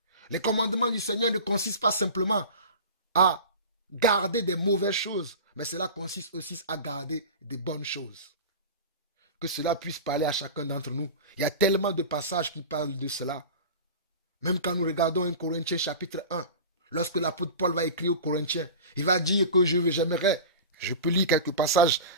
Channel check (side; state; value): both; inverted; correlation -0.33